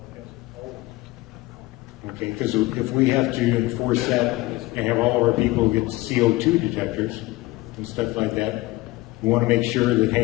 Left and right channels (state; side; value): quieter; right; 19.9 dB